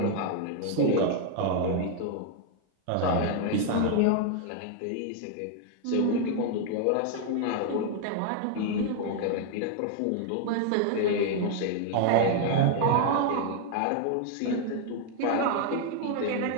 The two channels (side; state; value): both; different; correlation 0.00